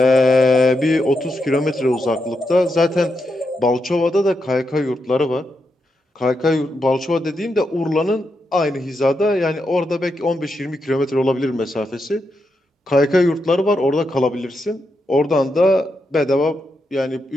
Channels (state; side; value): normal; both; correlation 0.84